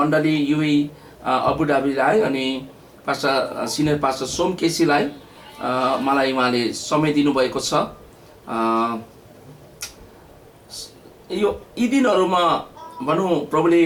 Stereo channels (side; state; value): both; identical; correlation 1.00